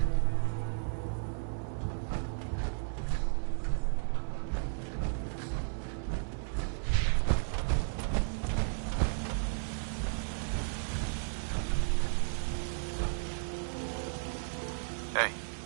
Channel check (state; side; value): silent; left; digital silence